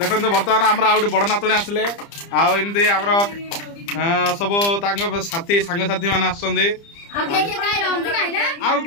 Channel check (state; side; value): late; right; 30 ms